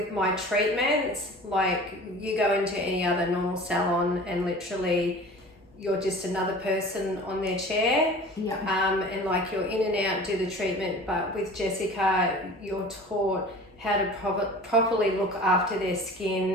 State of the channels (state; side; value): normal; both; correlation 0.41